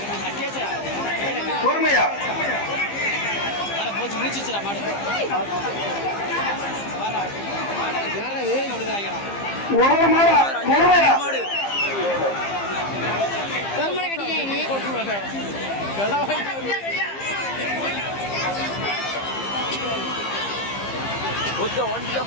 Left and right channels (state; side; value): late; right; 15 ms